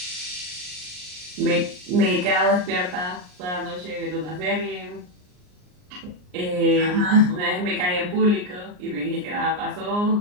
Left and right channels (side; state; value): left; late; 39 ms